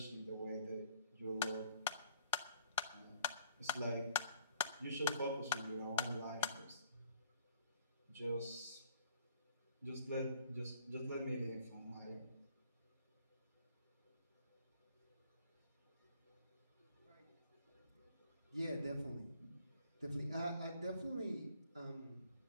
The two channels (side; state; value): both; inverted; correlation -0.59